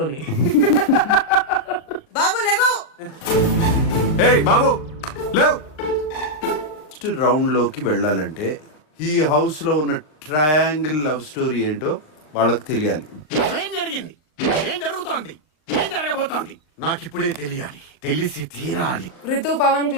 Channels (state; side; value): late; right; 39 ms